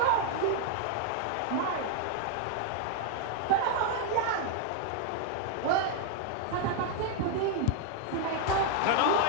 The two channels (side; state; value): both; different; correlation 0.00